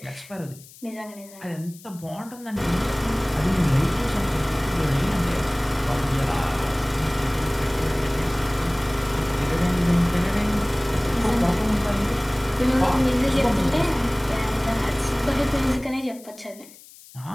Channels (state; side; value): noise; left; hiss, 21 dB below the sound